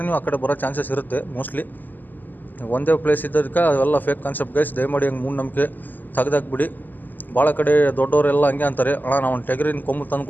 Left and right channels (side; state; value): right; late; 0.087 ms